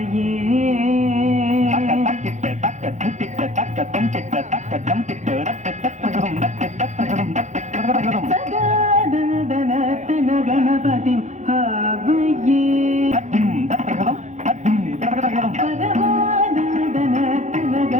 सदादनदन गणपतिं भावये परमादनदन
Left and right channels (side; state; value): left; late; 0.35 ms